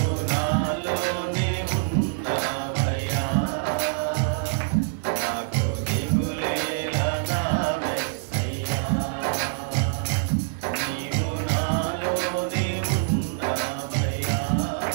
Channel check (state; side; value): silent; left; 61 dB below the other